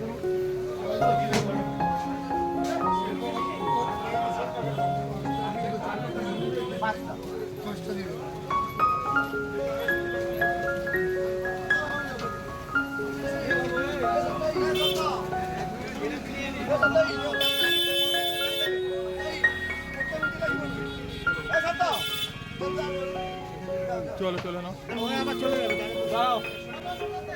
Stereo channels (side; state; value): both; identical; correlation 1.00